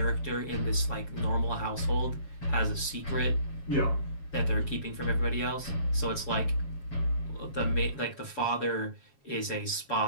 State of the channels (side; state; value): right; late; 7.3 ms